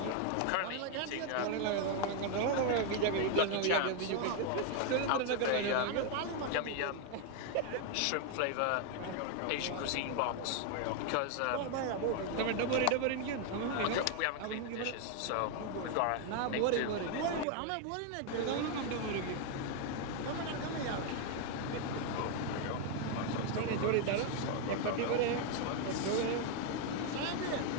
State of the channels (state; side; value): different; both; correlation 0.00